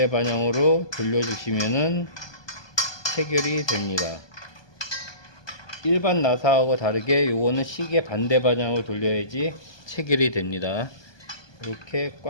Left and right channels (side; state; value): right; late; 1.2 ms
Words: 방향으로 돌려주시면은 체결이 됩니다. 일반 나사하고 다르게 요거는 시계 반대 방향으로 돌려야지 체결이 됩니다. 이렇게